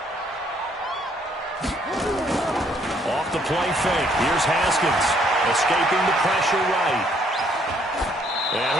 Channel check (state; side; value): normal; both; correlation 0.66